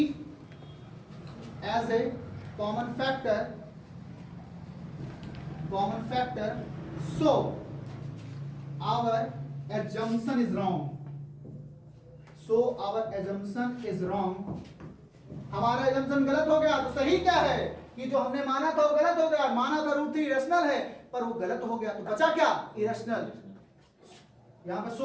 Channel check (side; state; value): both; identical; correlation 1.00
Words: as a common factor so our assumption is wrong हमारा assumption गलत हो गया। तो सही क्या है कि जो हमने माना था वो गलत हो गया। माना था √3 रैशनल है पर वो गलत हो गया तो बचा क्या इरेशनल। यहां पर